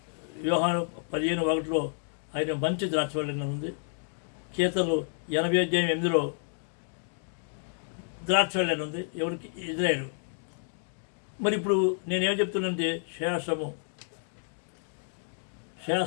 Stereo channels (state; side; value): silent; right; digital silence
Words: యోహాను 15:1 ఆయన మంచి ద్రాక్షవల్లి ఉంది. కీర్తనలు 80:8 ద్రాక్షవల్లి ఉంది. ఎవరికి? ఇజ్రాయేలు. మరి ఇప్పుడు నేనేం చెప్తున్నానంటే శాస్త్రమే